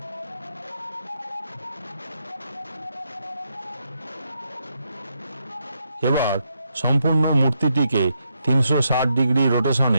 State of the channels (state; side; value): inverted; both; correlation -0.80